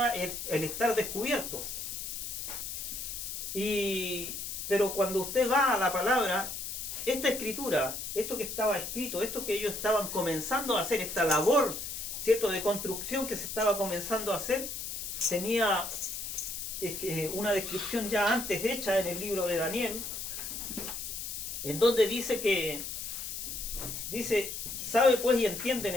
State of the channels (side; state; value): left; noise; hiss, 6 dB below the sound